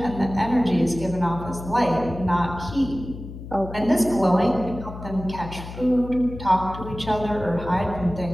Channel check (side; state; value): left; noise; hum, 11 dB below the sound